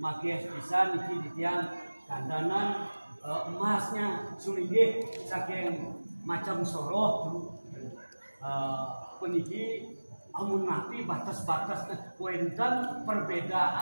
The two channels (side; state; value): both; inverted; correlation -1.00